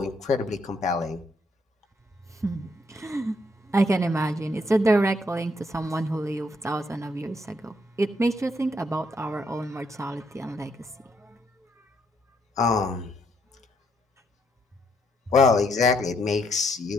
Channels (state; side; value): normal; both; correlation 0.73